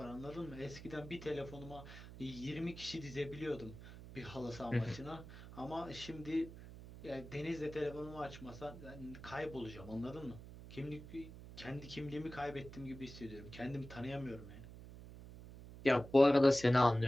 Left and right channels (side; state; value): right; noise; hum, 14 dB below the sound